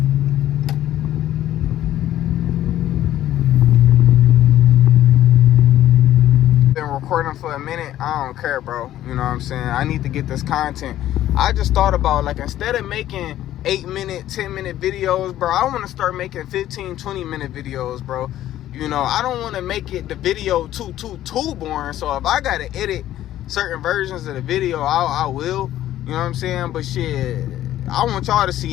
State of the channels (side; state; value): right; quieter; 13.0 dB